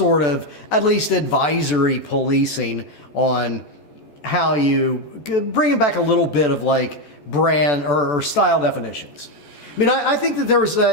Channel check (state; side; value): late; right; 14 ms